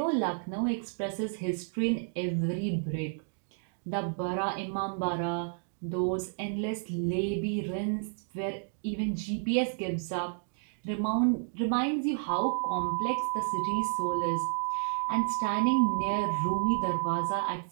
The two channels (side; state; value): left; silent; digital silence